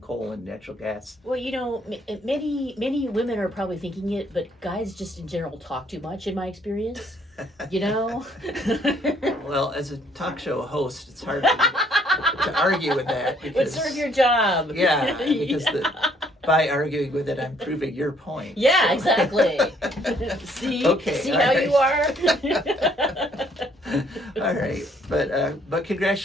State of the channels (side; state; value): both; normal; correlation 0.65